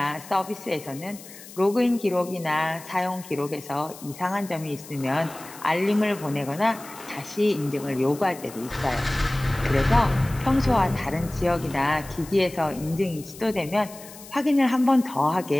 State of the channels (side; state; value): left; noise; hiss, 17 dB below the sound